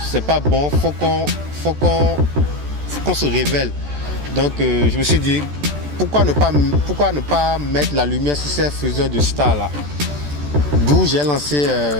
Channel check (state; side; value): late; left; 14 ms